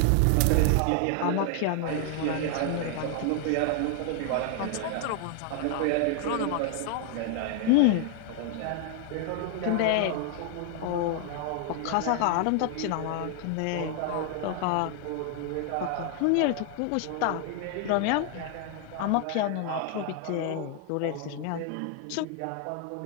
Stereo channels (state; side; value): different; both; correlation 0.00